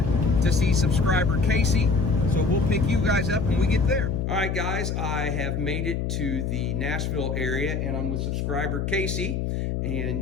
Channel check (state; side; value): noise; left; hum, 1 dB below the sound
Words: to see subscriber Casey. So we'll pick you guys up when we get there. All right, guys, I have made it to the Nashville area, and I'm with subscriber Casey.